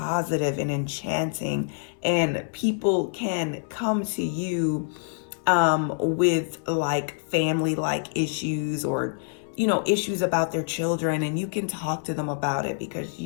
and enchanting, and people can come to you with like family like issues, or issues about their children, and you can talk to them about it because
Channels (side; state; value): right; silent; 61 dB below the other